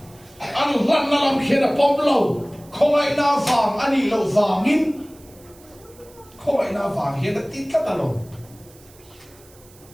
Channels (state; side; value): noise; right; hiss, 26 dB below the sound